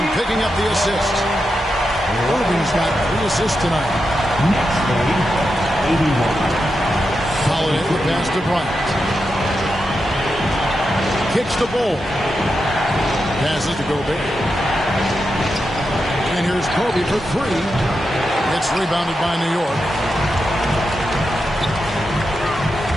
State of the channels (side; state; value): both; normal; correlation 0.87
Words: picking up the assist. Irving's got 3 assists tonight. Next game, 81. Holiday the pass to Bryant. Kicks the ball. Passes to Gobert. And here's Kobe for 3. It's rebounded by New York.